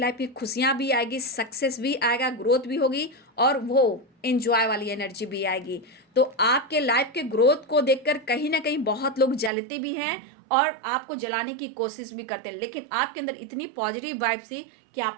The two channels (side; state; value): left; drops out; at 9.5 s